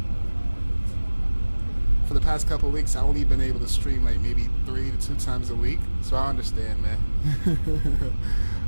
For the past couple of weeks, I only been able to stream like maybe 3 to 2 times a week. So I understand, man.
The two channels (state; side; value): inverted; both; correlation -1.00